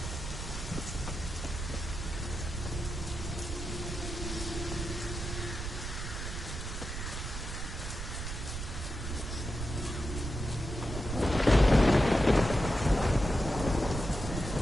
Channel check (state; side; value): noise; right; rumble, 5 dB below the sound